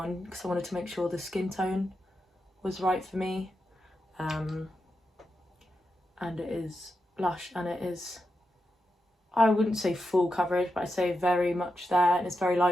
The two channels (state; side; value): normal; both; correlation 0.87